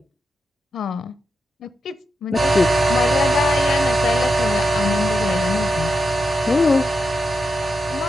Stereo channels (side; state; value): both; normal; correlation 0.87